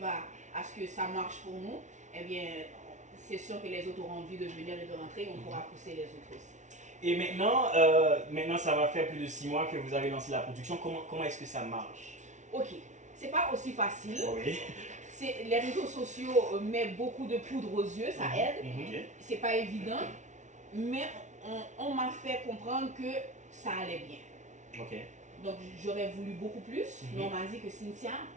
à ce que ça marche pour nous, eh bien, c'est sûr que les autres auront envie de venir et de rentrer, on pourra pousser les autres aussi. Et maintenant, ça va faire plus de 6 mois que vous avez lancé la production. Comment est-ce que ça marche? Ok. C'est pas aussi facile. Oui. Les réseaux sociaux mettent beaucoup de poudre aux yeux, ça aide. C'est pas évident, mais on m'a fait comprendre que ça allait bien. Ok. Donc j'aurais voulu beaucoup plus, mais on m'a dit que Cynthia,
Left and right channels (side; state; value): left; late; 0.35 ms